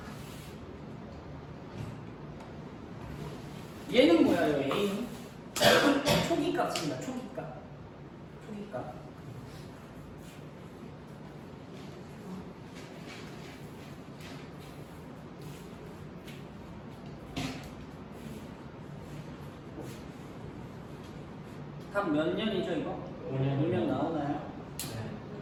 얘는 뭐야, 요 A는? 초기값입니다. 초기값. 답 몇 년이죠, 이거? 5년 나오나요? 네.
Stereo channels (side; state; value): both; identical; correlation 1.00